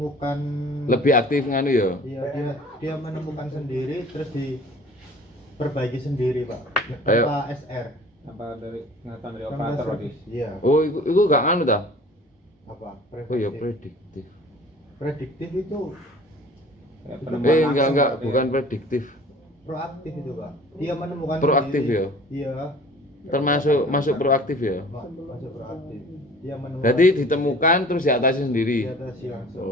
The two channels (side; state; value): both; normal; correlation 0.47